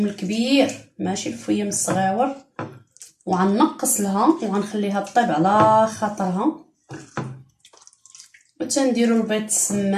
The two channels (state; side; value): identical; both; correlation 1.00